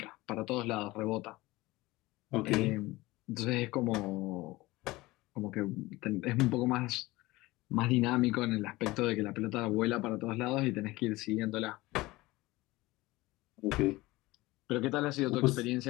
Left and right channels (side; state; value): right; quieter; 19.9 dB